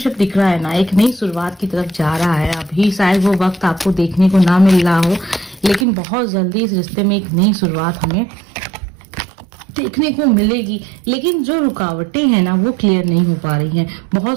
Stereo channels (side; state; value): left; drops out; at 5.9 s